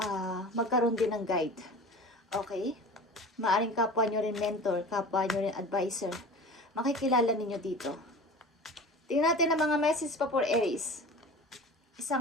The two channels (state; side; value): normal; both; correlation 0.36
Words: magkaroon din ng guide. Okay? Maaring kapwa nyo rin mentor, kapwa nyo rin advisor. Makikilala ninyo dito. Tingnan natin ang mga message pa for Aries.